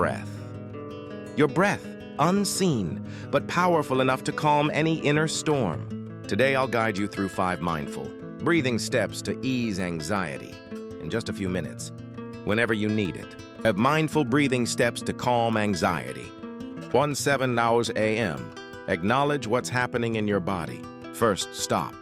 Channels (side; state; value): both; identical; correlation 1.00